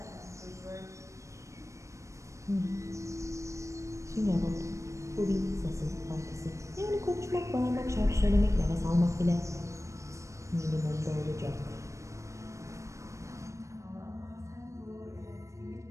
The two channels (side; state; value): left; late; 0.15 ms